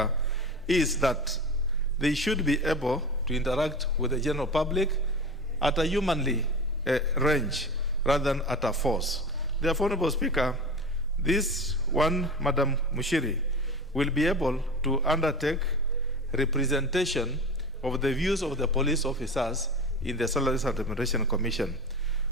is that they should be able to interact with the general public at a humanly range rather than at a force. Therefore, Honorable Speaker, this one, Madam Mushiri, will be able to undertake representation of the views of the police officers in the Salaries and Remuneration Commission.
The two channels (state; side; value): normal; both; correlation 0.31